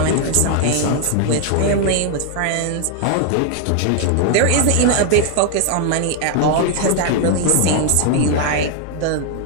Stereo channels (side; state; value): both; different; correlation 0.00